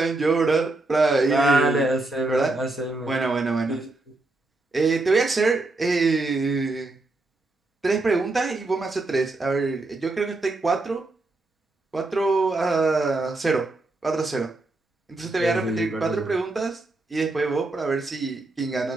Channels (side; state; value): left; quieter; 3.1 dB